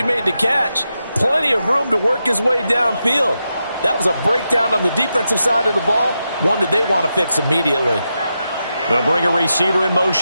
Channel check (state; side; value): inverted; both; correlation -0.87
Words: made the catch, plenty of room to work his way downfield. That was a breakdown on the defensive side of the ball, one that they want to fix immediately. They'll bring a receiver in